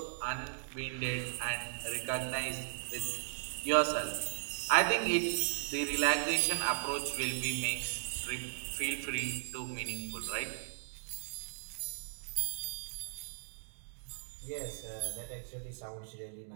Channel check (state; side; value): silent; left; digital silence